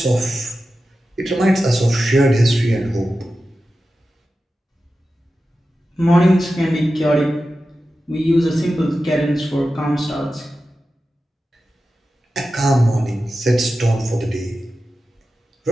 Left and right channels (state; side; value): normal; both; correlation 0.93